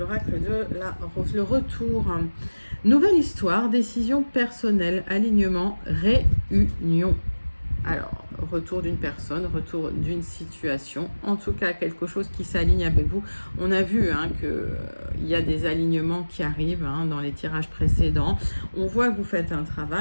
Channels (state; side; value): inverted; both; correlation -1.00